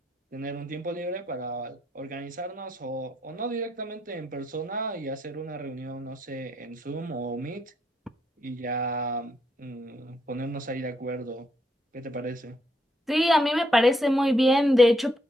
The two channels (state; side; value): normal; both; correlation 0.75